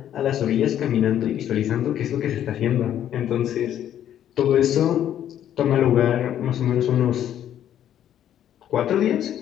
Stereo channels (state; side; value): quieter; right; 10.7 dB